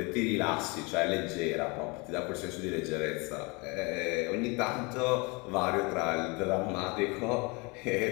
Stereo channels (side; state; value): right; quieter; 28.1 dB